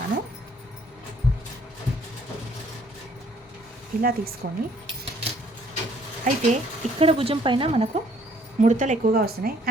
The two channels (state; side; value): normal; both; correlation 0.61